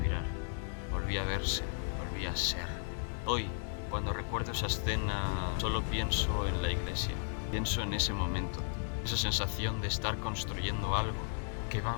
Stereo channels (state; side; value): silent; right; digital silence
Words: volvía a verse, volvía a ser. Hoy, cuando recuerdo esa escena, solo pienso en la iglesia. Pienso en ese momento, esa sensación de estar construyendo algo que va